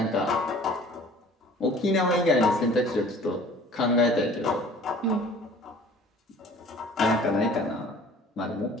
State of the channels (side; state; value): both; normal; correlation 0.48